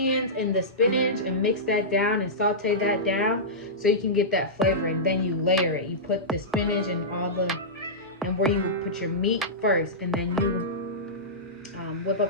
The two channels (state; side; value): normal; both; correlation -0.15